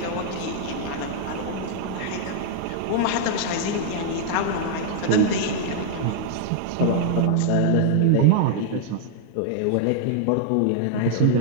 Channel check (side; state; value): both; different; correlation -0.01